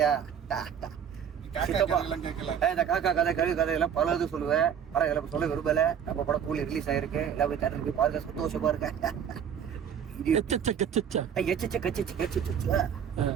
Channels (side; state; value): left; quieter; 8.3 dB